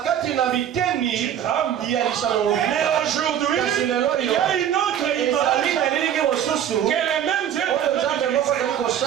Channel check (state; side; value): quieter; left; 9.9 dB